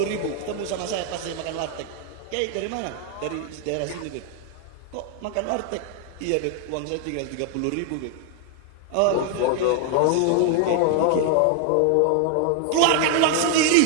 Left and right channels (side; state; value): both; different; correlation 0.00